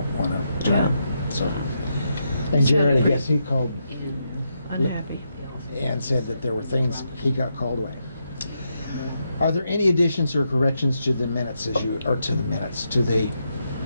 want to try. Yeah. So, and Jared, I guess he called Unhappy. and said that there were things, he got called away. Are there any additions or corrections to the minutes to the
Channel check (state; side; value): inverted; both; correlation -0.82